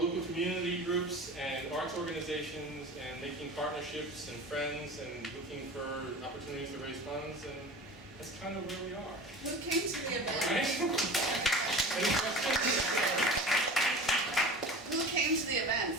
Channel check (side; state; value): both; normal; correlation 0.36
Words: community groups and arts organizations and making partnerships and friends and looking for opportunities to raise funds, and that's kind of where we are. Who came to the event? Right? Any questions? Who came to the